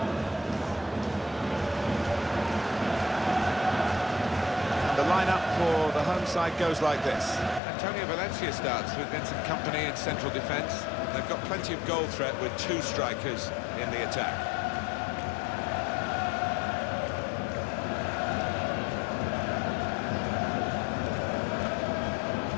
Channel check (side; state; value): right; drops out; at 7.6 s